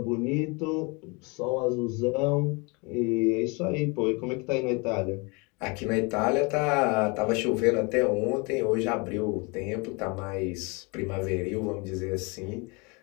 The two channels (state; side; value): quieter; right; 29.6 dB